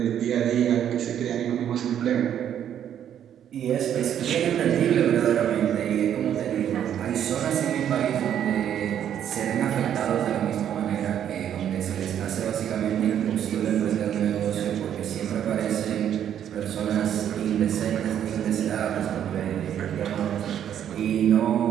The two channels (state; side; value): quieter; left; 9.8 dB